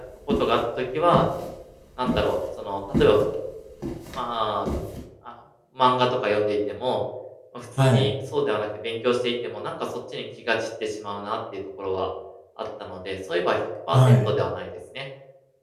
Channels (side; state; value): both; identical; correlation 1.00